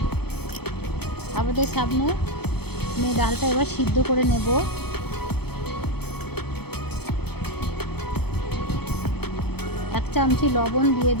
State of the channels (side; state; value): right; late; 0.97 ms